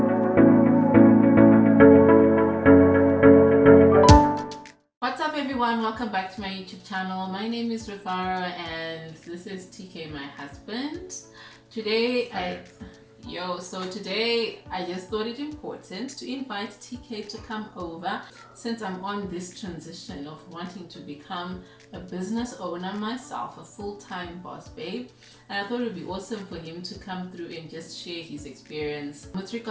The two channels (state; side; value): identical; both; correlation 1.00